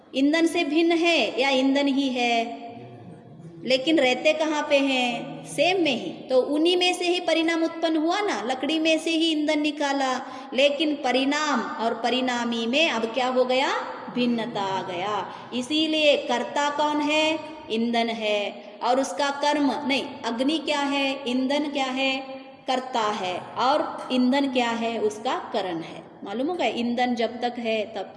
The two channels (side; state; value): both; identical; correlation 1.00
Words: ईंधन से भिन्न है या ईंधन ही है? लेकिन रहते कहाँ पे हैं? सेम में ही। तो उन्हीं में से ही परिणाम उत्पन्न हुआ ना, लकड़ी में से ही ईंधन निकाला। लेकिन परिणाम और परिणामी में अब क्या हो गया? भिन्नता आ गया। इसीलिए कर्ता कौन है? ईंधन है। और उसका कर्म नहीं, अग्नि क्या है? ईंधन क्या है? कर्ता है। और ईंधन क्या है? उसका करण है। मालूम होगा, ईंधन जब तक है तब